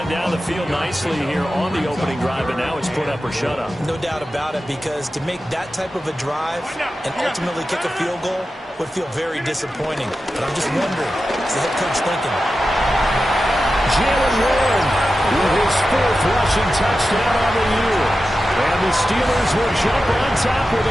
down the field nicely here on the opening drive, and now it's put up or shut up. No doubt about it, because to make that type of a drive and ultimately kick a field goal would feel very disappointing. But I'm just wondering, what's the head coach thinking? Jalen Warren with his 4th rushing touchdown on the year. And the Steelers will jump on top with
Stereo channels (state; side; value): normal; both; correlation 0.92